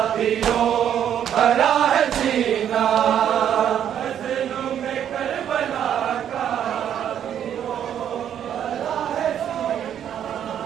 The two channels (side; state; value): left; quieter; 9.6 dB